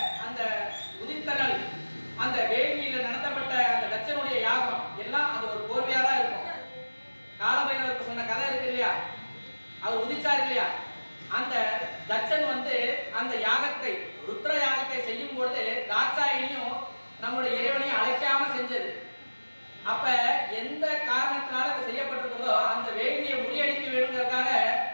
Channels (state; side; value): inverted; both; correlation -1.00